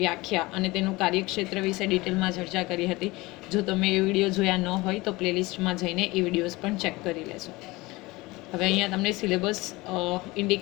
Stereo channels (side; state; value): right; quieter; 21.7 dB